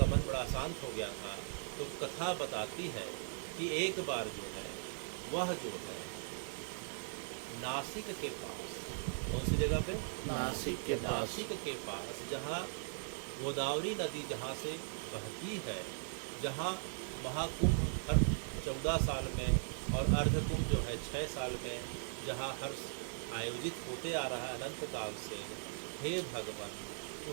मन बड़ा अशांत हो गया था। तो कथा बताती है कि एक बार जो है वह जो है नासिक के पास, कौन सी जगह पे? नासिक के पास जहाँ गोदावरी नदी जहाँ से बहती है, जहाँ महाकुंभ हर 14 साल में और अर्धकुंभ जो है 6 साल में जहाँ हर आयोजित होते आ रहा है अनंत काल से, हे भगवान,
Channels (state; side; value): silent; left; digital silence